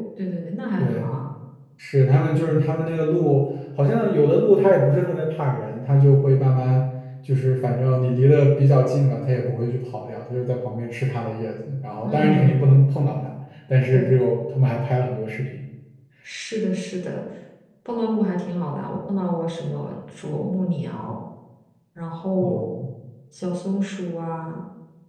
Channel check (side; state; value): both; identical; correlation 1.00